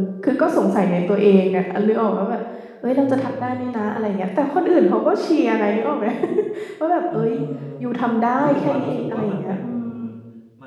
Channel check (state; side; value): identical; both; correlation 1.00